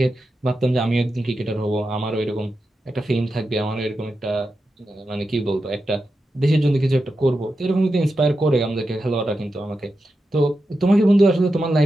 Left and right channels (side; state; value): both; normal; correlation 0.89